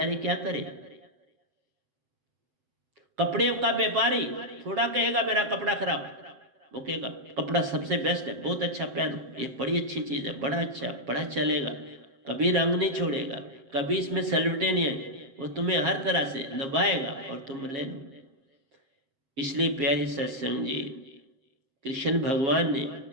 क्या करे। कपड़े का व्यापारी थोड़ा कहेगा मेरा कपड़ा खराब, वो कहेगा कपड़ा सबसे बेस्ट है, बहुत अच्छा पहनो, ये बड़ी अच्छी चीज है, बड़ा अच्छा, बड़ा चलेगा, कभी रंग नहीं छोड़ेगा, कभी इसमें सलवटे नहीं आए। वो तुम्हें हर तरह से लुभाएगा और तुम ले लो। इसलिए प्यारी सत्संग जी, कृष्ण भगवान ने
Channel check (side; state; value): left; late; 7.3 ms